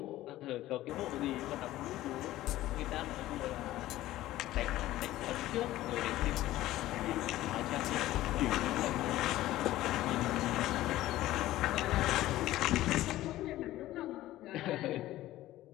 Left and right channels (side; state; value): right; quieter; 15.4 dB